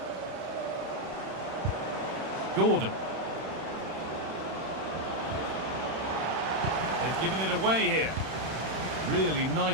Gordon. They've given it away here. Really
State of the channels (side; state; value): left; late; 31 ms